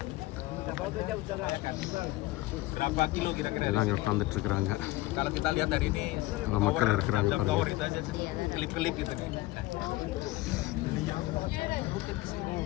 எல்லாம் அங்கே உட்காந்துட்டு இருக்கிறாங்க. அவ்வளோ மக்கள் இருக்கிறாங்க பாருங்க.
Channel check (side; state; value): right; quieter; 18.9 dB